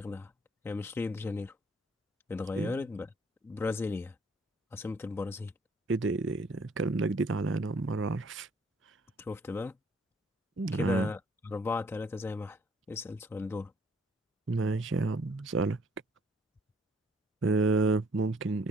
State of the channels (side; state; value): both; normal; correlation 0.62